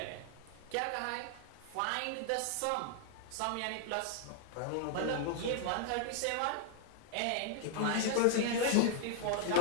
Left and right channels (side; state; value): both; different; correlation 0.00